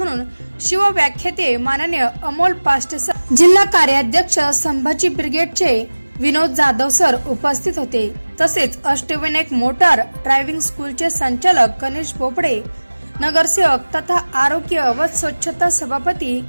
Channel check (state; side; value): inverted; both; correlation -1.00